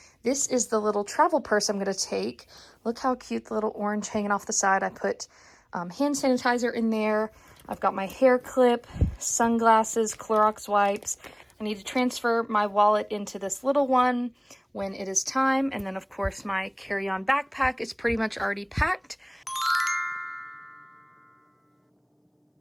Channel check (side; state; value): both; identical; correlation 1.00